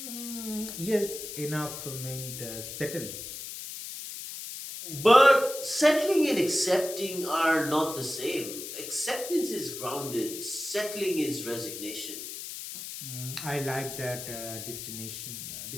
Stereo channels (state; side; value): noise; left; hiss, 8 dB below the sound